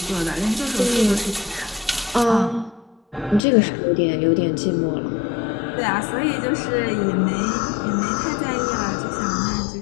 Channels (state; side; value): drops out; right; at 3.4 s